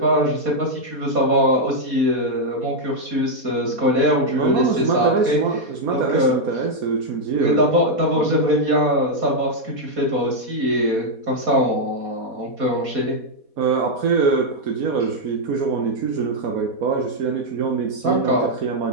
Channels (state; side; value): late; left; 4.2 ms